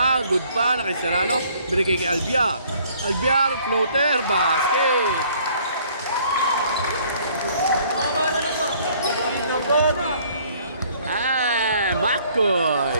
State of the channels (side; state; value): both; inverted; correlation -0.59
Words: good pa, na kay Serrano. Binigay kay Albiar. Albiar, floater, basket. Makoy,